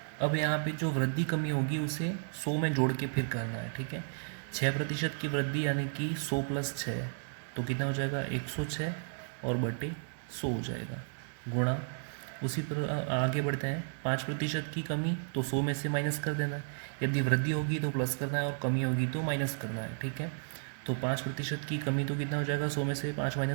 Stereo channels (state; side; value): silent; left; digital silence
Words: अब यहाँ पे जो वृद्धि कमी होगी उसे 100 में जोड़ के फिर करना है, ठीक है। 6% की वृद्धि यानी कि 100 + 6, तो कितना हो जाएगा 106 और बटे 100 हो जाएगा, गुणा उसी पर आगे बढ़ते हैं। 5% की कमी तो 100 में से माइनस कर देना है, यदि वृद्धि होगी तो प्लस करना है और कमी होगी तो माइनस करना है, ठीक है। तो 5% की कमी तो कितना हो जाएगा, 100 में से 5